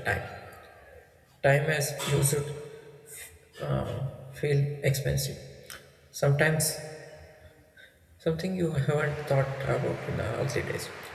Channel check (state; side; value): identical; both; correlation 1.00